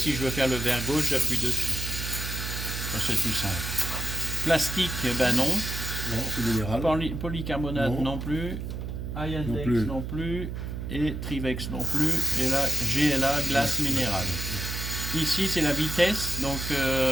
je veux faire le verre gauche, j'appuie dessus. Ça, c'est tout simple. Plastique, ben non. Non, c'est minéral. Polycarbonate non plus. Iandex non plus. Et Trivex non plus. Et là, GLA, glace minérale. Ici, c'est la vitesse. Donc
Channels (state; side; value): noise; right; hum, 6 dB below the sound